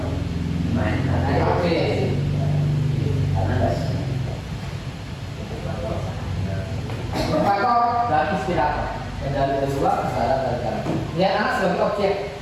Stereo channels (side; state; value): both; identical; correlation 1.00